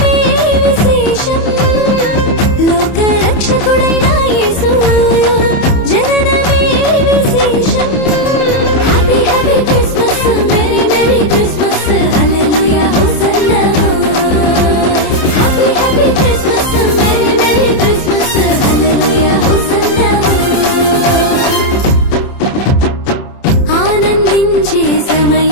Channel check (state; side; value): late; right; 30 ms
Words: విశేషం లోక రక్షకుడైన యేసు జననమే విశేషం happy happy Christmas merry merry Christmas hallelujah hosanna happy happy Christmas merry merry Christmas hallelujah hosanna ఆనందించే